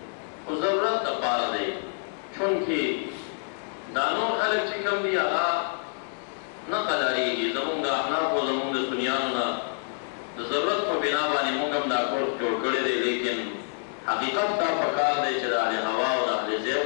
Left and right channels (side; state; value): right; silent; digital silence